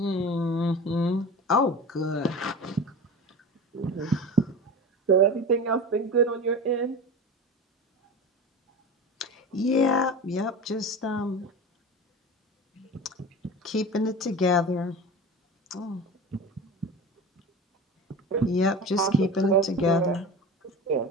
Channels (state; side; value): normal; both; correlation 0.32